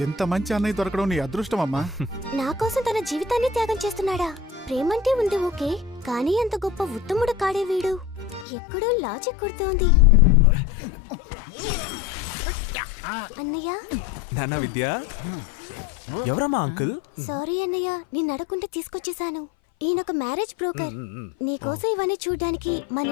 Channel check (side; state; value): right; drops out; at 8.5 s